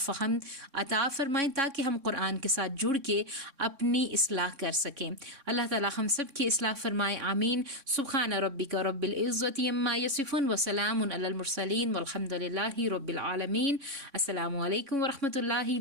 عطا فرمائیں تاکہ ہم قرآن کے ساتھ جڑ کے اپنی اصلاح کر سکیں. اللہ تعالی ہم سب کی اصلاح فرمائے. آمین. سبحان ربک رب العزت عما یصفون وسلام علی المرسلین والحمد للہ رب العالمین. السلام علیکم ورحمۃ اللہ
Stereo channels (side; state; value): left; late; 3.6 ms